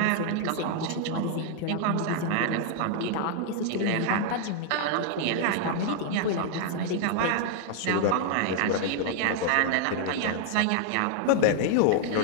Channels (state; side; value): different; both; correlation -0.01